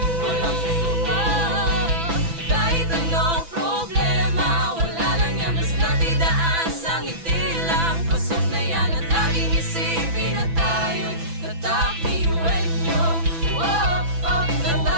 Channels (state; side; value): late; left; 6.0 ms